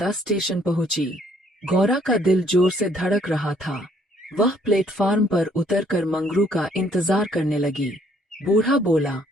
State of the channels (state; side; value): normal; both; correlation 0.64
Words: स्टेशन पहुंची। गौरा का दिल जोर से धड़क रहा था। वह प्लेटफार्म पर उतरकर मंगरू का इंतजार करने लगी। बूढ़ा बोला,